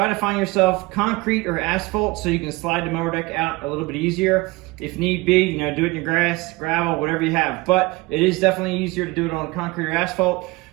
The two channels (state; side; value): quieter; left; 22.3 dB